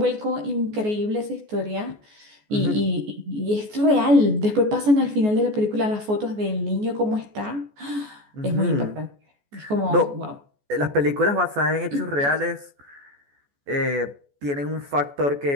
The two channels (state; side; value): late; left; 14 ms